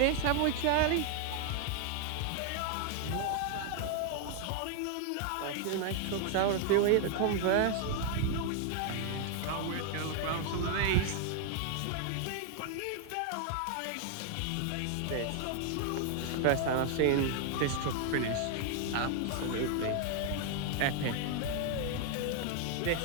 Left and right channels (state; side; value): different; both; correlation 0.00